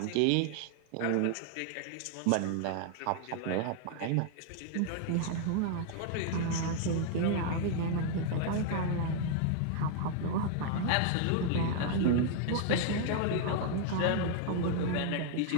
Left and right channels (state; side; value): different; both; correlation 0.00